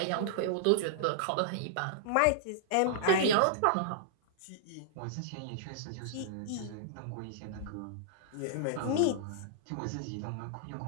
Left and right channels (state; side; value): different; both; correlation -0.02